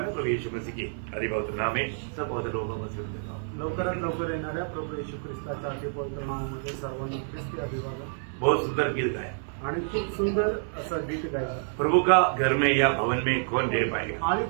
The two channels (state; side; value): silent; left; 59 dB below the other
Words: प्रभु यीशु मसीह की अधिपवित्र नाम में सब बहुत लोगों को सुन देता हूँ। लवकरात लवकर येणाऱ्या प्रभू येशू ख्रिस्ताच्या अतिपवित्र नावामध्ये सर्वांना ख्रिस्ती अभिवादन बहुत सुंदर गीत गाया। आणि खूप सुंदर असं गीत गायलं। प्रभु का घर में या भवन में कौन रह पाएगा? आणि